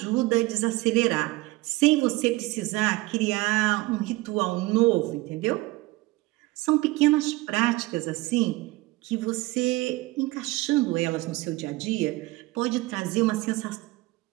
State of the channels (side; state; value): left; quieter; 20.4 dB